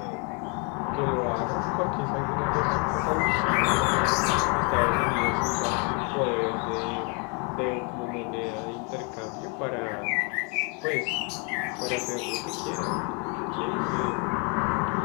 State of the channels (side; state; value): right; quieter; 34.3 dB